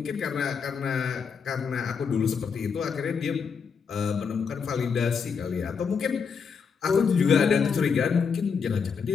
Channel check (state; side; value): quieter; right; 6.0 dB